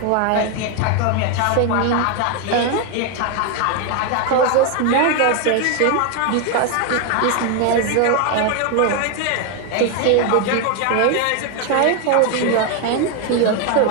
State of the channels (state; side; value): different; both; correlation 0.01